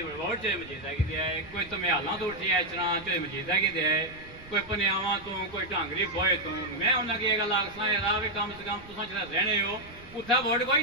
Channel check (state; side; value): noise; right; rumble, 19 dB below the sound